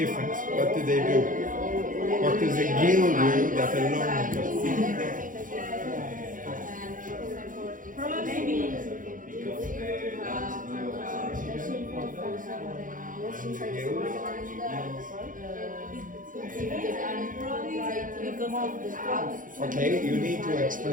What do they do? What does a gill do that a lung does? Okay, you need to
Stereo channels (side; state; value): left; late; 0.39 ms